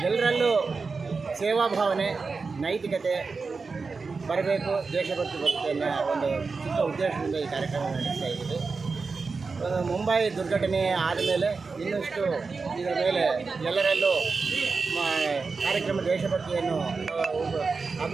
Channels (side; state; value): left; quieter; 4.5 dB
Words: ಎಲ್ಲರಲ್ಲೂ ಸೇವಾ ಭಾವನೆ, ನೈತಿಕತೆ ಬರಬೇಕು, ದೇಶಭಕ್ತಿ ಬರುತ್ತೆ ಅನ್ನೋ ಒಂದು ಚಿಕ್ಕ ಉದ್ದೇಶದಿಂದ ಈ ಕಾರ್ಯಕ್ರಮ ನಡೆಸ್ತಾ ಇದ್ದೀವಿ. ಮುಂಬೈ ದುರ್ಘಟನೆ ಆದಮೇಲೆ ಇನ್ನಷ್ಟು ಇದರ ಮೇಲೆ ಎಲ್ಲರಲ್ಲೂ ಕಾರ್ಯಕ್ರಮ ದೇಶಭಕ್ತಿಯನ್ನು